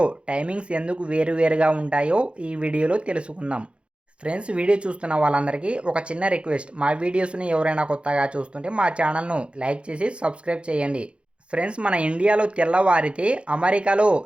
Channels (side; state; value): left; late; 0.058 ms